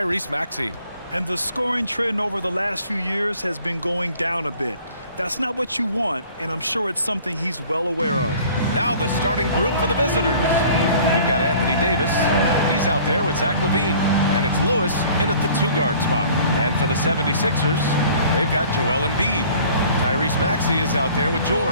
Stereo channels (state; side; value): inverted; both; correlation -0.51